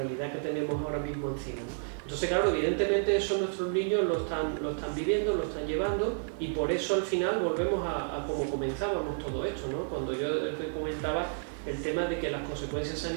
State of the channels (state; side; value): silent; left; 57 dB below the other